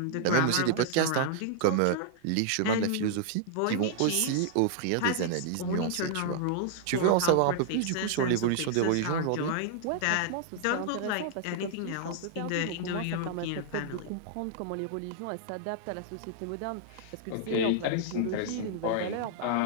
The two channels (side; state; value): both; different; correlation -0.01